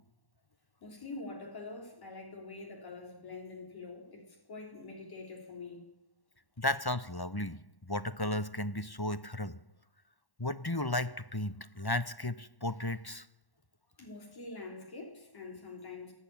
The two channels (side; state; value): right; late; 1.1 ms